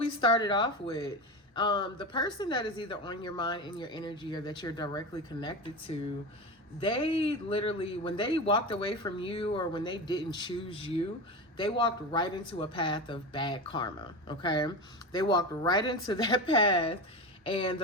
started off with. The person that is either on your mind, in your energy, or that you're directly connected to, they literally, when they walked away from you or when they didn't choose you, they walked right into a path of bad karma, okay? They walked right into that path, and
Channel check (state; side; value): normal; both; correlation 0.24